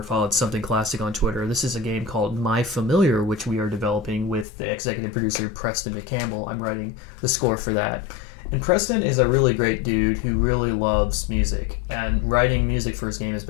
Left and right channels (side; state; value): right; drops out; at 4.5 s